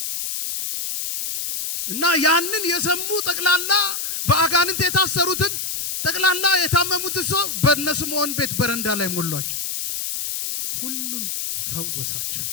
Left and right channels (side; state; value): left; noise; hiss, 3 dB below the sound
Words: እና ያንን የሰሙ ጠቅላላ በአጋንንት የታሰሩትን ጠቅላላ የታመሙትን ሰው በእነስምዖን ቤት በረንዳ ላይ ሞሏቸው፣ ሁሉን ፈወሳቸው።